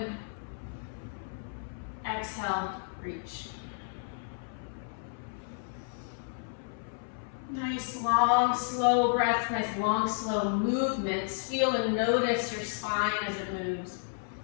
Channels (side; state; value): right; silent; 57 dB below the other